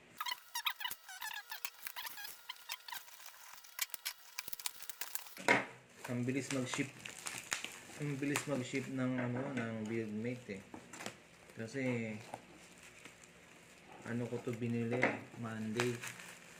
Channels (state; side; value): identical; both; correlation 1.00